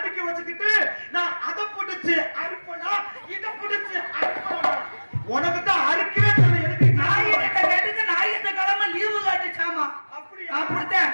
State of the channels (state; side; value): inverted; both; correlation -1.00